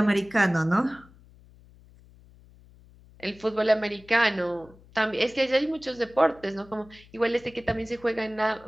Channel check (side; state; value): left; noise; hum, 25 dB below the sound